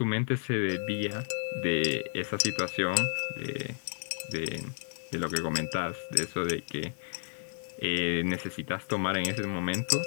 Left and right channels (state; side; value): silent; right; digital silence